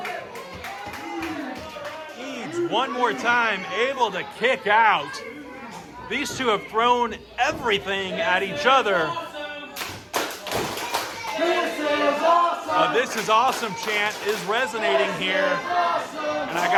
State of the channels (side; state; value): both; identical; correlation 1.00